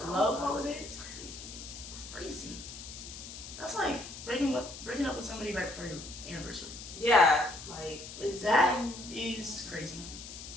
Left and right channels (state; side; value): noise; left; hiss, 12 dB below the sound